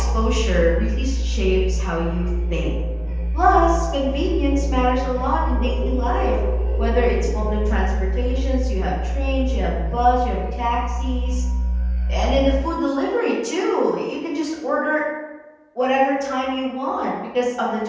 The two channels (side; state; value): both; identical; correlation 1.00